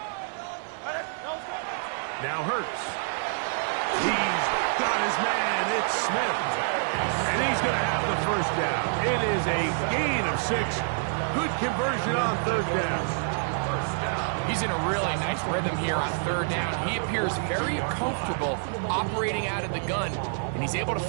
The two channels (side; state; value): left; silent; 60 dB below the other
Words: Now Hurts. He's got his man. It's Smith. And he's going to have the first down. It is a gain of 6. Good conversion on third down. He's in a really nice rhythm here on third down. He appears very comfortable operating out of the gun, and he's able to